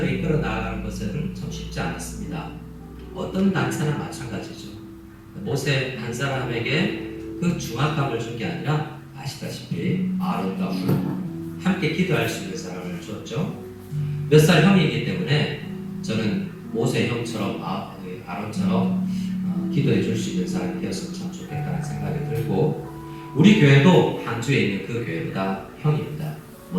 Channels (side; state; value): both; identical; correlation 1.00